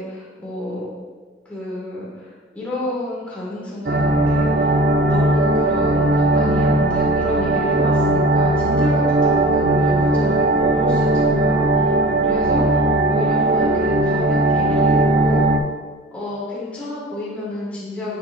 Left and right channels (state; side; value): normal; both; correlation 0.39